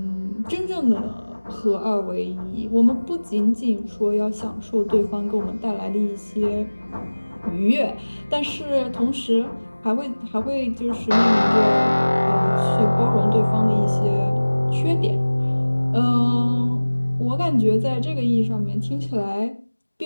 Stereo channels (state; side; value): inverted; both; correlation -1.00